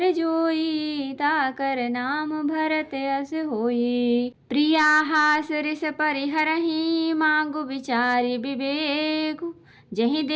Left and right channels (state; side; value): identical; both; correlation 1.00